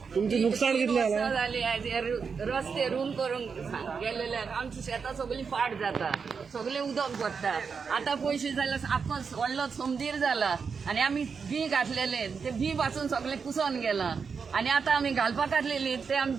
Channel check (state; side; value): quieter; left; 5.7 dB